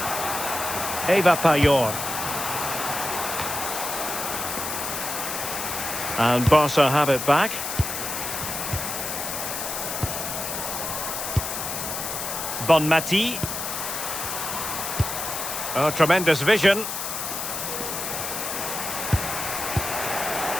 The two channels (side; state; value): left; noise; hiss, 4 dB below the sound